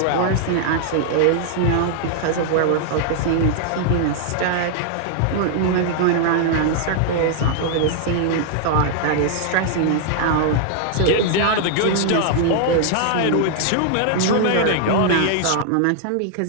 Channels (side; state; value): both; different; correlation -0.01